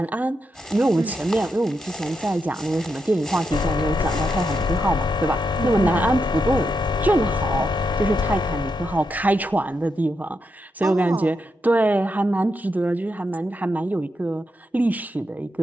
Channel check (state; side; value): normal; both; correlation 0.84